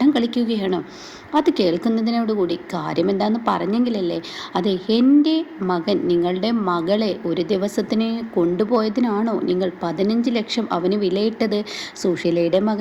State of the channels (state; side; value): identical; both; correlation 1.00